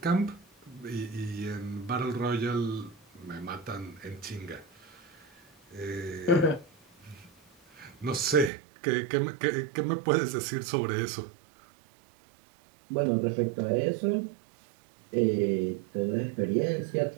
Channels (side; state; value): left; drops out; at 8.5 s